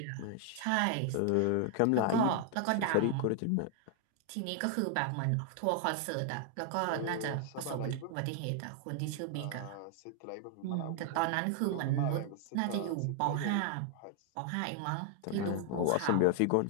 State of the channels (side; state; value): both; different; correlation 0.00